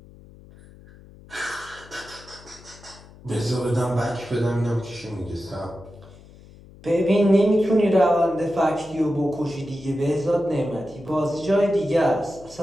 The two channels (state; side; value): noise; left; hum, 22 dB below the sound